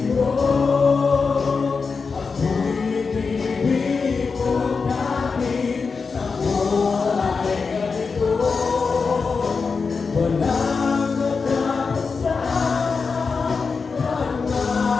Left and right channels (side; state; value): right; quieter; 4.9 dB